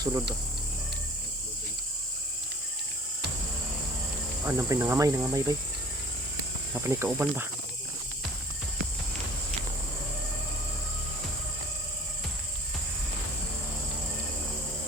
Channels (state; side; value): normal; both; correlation 0.49